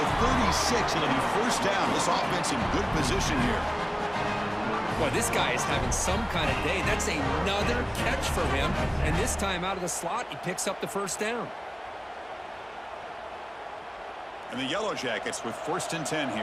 36. It'll be 1st down. This offense in good position here. Boy, this guy is having some kind of day. That's another catch for him. And this time out of the slot, he picks up the 1st down. And the Yellow Jackets with 1st and 10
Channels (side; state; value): both; identical; correlation 1.00